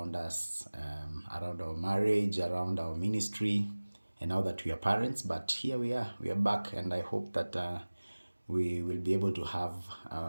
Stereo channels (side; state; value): both; inverted; correlation -1.00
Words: us, around our marriage, around our ministry, and now that we are parents. But here we are. We are back, and I hope that we will be able to have